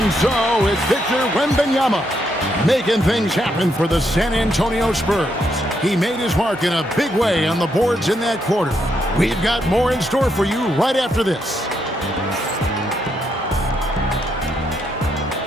so it's Victor Wembanyama making things happen for the San Antonio Spurs. He made his mark in a big way on the boards in that quarter. We've got more in store for you right after this.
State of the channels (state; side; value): normal; both; correlation 0.78